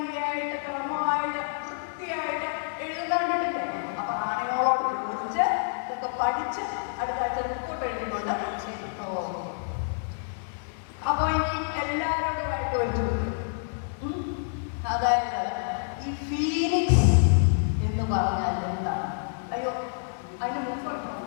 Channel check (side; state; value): right; silent; digital silence